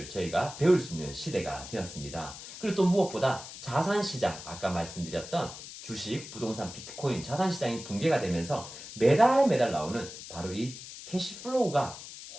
저희가 배울 수 있는 시대가 되었습니다. 그리고 또 무엇보다 자산시장, 아까 말씀드렸던 주식, 부동산, 비트코인, 자산시장이 붕괴가 되면서 매달 나오는 바로 이 캐시플로우가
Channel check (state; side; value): noise; left; hiss, 13 dB below the sound